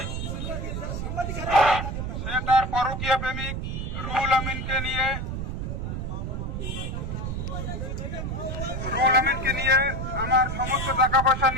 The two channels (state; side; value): noise; right; rumble, 4 dB below the sound